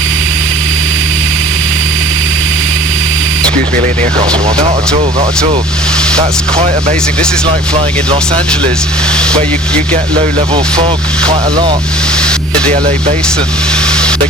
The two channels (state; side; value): normal; both; correlation 0.48